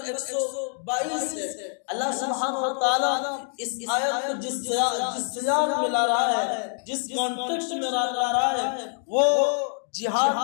122 ہے۔ اللہ سبحانہ و تعالیٰ اس آیت کو جس سیاق میں لا رہا ہے، جس کانٹیکسٹ میں لا رہا ہے، وہ جہاد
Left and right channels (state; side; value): silent; right; 61 dB below the other